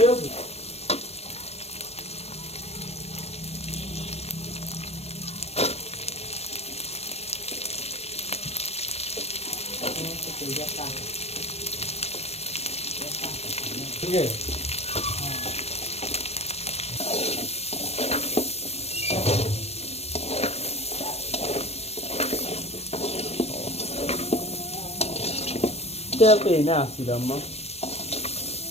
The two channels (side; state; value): right; late; 0.30 ms